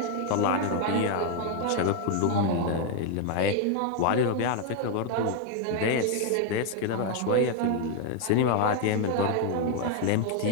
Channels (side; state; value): both; different; correlation 0.01